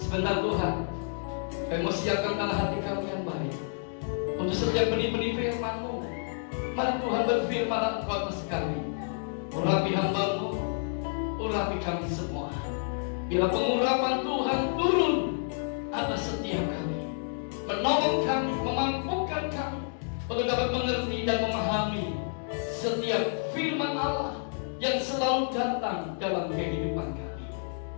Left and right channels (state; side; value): silent; right; digital silence